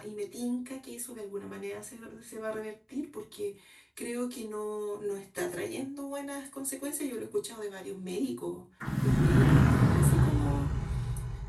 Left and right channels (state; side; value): identical; both; correlation 1.00